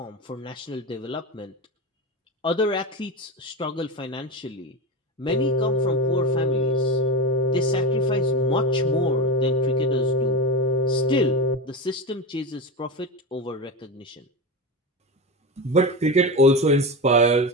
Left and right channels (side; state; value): both; normal; correlation 0.21